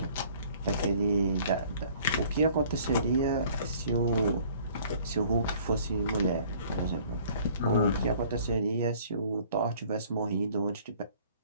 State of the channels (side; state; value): both; inverted; correlation -0.54